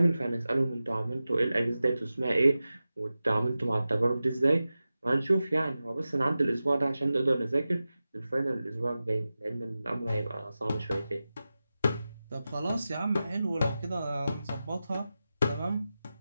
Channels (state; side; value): inverted; both; correlation -0.94